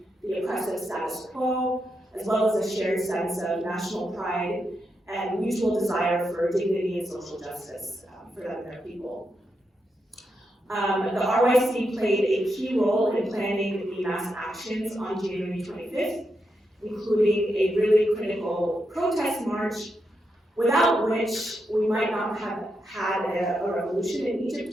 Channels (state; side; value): normal; both; correlation 0.84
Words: the oppressive status quo, as well as a shared sense of national pride and mutual desire for dignity and social justice for them and their people. The RYC played a key role in planning the mass actions on January 25th, including a really critical protest march, without which we might not have had a revolution in